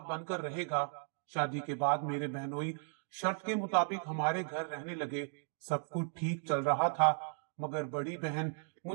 बनकर रहेगा। शादी के बाद मेरे बहनोई शर्त के मुताबिक हमारे घर रहने लगे। सब कुछ ठीक चल रहा था, मगर बड़ी बहन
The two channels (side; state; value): left; silent; 54 dB below the other